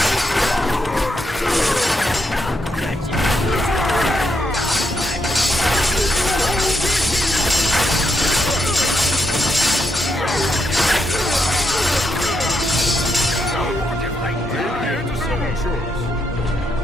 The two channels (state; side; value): normal; both; correlation 0.80